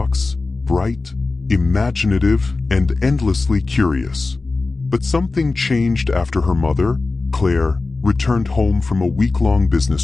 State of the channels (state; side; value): quieter; right; 3.6 dB